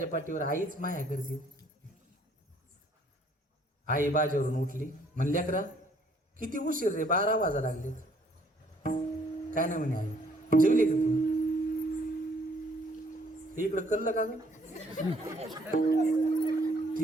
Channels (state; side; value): normal; both; correlation 0.63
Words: पाठीवर आईच माया करते. आई बाजेवरून उठली. म्हणली लेकरा किती उशीर रे, 12 वाजा लागले. काय नाही म्हणे आई. जेवली का तू? इकडं कल्ल का ग?